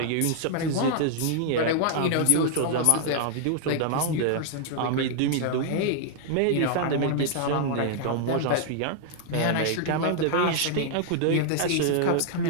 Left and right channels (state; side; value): different; both; correlation -0.01